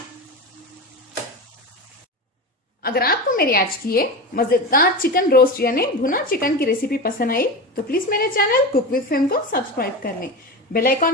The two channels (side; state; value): both; normal; correlation 0.24